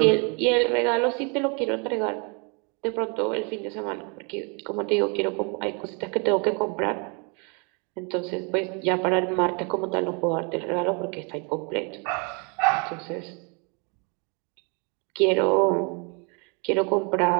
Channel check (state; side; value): quieter; left; 34.0 dB